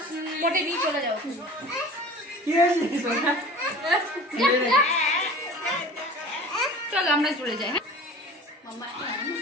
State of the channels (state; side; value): normal; both; correlation 0.40